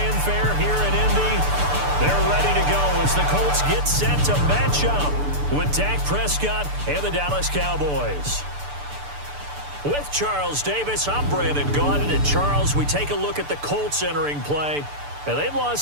here in Indy. They're ready to go as the Colts get set to match up with Dak Prescott and the Dallas Cowboys. With Charles Davis, I'm Brandon Godden. And Charles, we take a look at the Colts entering play. And they've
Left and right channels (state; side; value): late; left; 6.8 ms